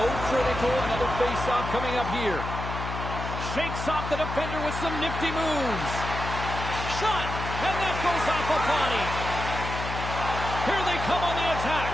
critical. Another face-off coming up here. Shakes off the defender with some nifty moves. Shot, and that goes off a body. Here they come on the attack.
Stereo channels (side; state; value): left; noise; hum, 5 dB below the sound